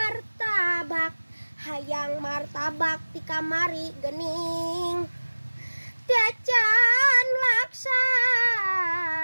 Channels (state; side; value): inverted; both; correlation -1.00